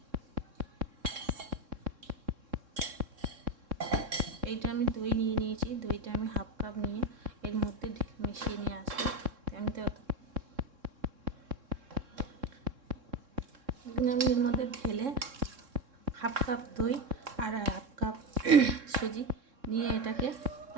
এইটা আমি দই নিয়ে নিয়েছি, দইটা আমি হাফ কাপ নিয়ে এর মধ্যে মিশিয়ে নিয়ে আসবো। আমি এর মধ্যে ঢেলে হাফ কাপ দই আর হাফ কাপ সুজি নিয়ে এটাকে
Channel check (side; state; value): left; late; 3.7 ms